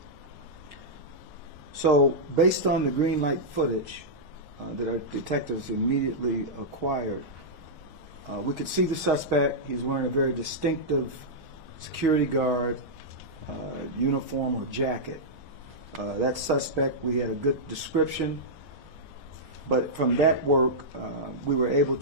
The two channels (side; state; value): left; late; 1.2 ms